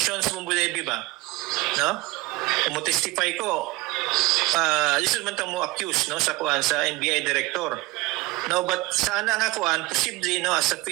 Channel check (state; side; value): quieter; left; 20.3 dB